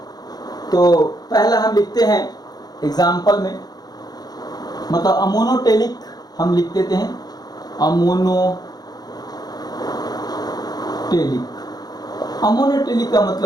तो पहला हम लिखते हैं एग्जाम्पल में, मतलब अमोनोटेलिक हम लिख देते हैं, अमोनोटेलिक का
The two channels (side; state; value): right; late; 0.19 ms